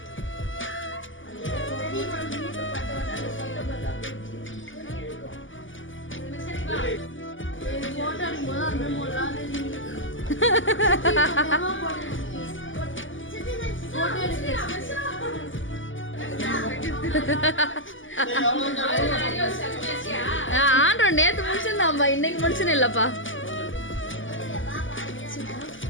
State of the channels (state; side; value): late; right; 0.57 ms